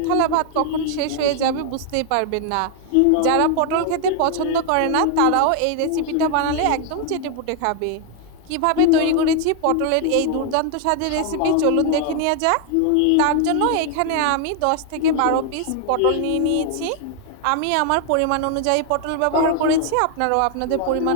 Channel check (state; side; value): different; both; correlation 0.00